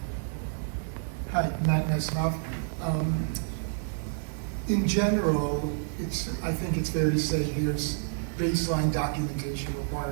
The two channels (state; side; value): silent; left; digital silence